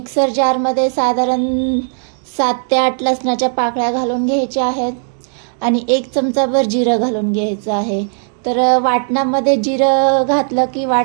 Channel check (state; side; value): silent; left; digital silence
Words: जारमध्ये साधारण 7 ते 8 लसणाच्या पाकळ्या घालून घ्यायच्या आहेत आणि 1 चमचाभर जिरं घालून घ्यायचं आहे। तर वाटणामध्ये जिरं घातलं की